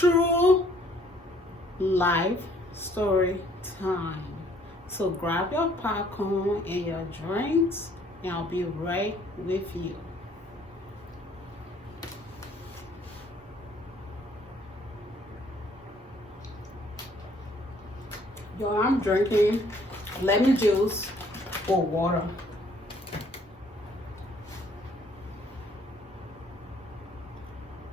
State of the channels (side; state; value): both; normal; correlation 0.61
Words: life story time. So grab your popcorn and your drinks, and I'll be right with you. Yo, I'm drinking lemon juice or water.